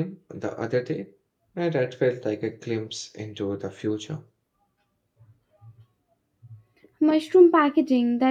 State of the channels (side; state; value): both; identical; correlation 1.00